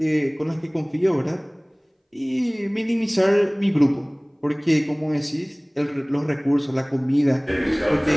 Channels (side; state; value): both; identical; correlation 1.00